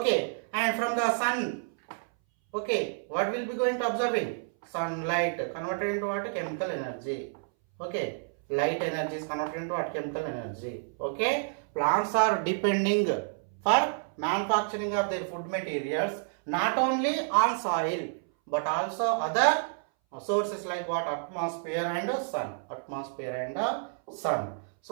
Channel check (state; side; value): silent; left; 58 dB below the other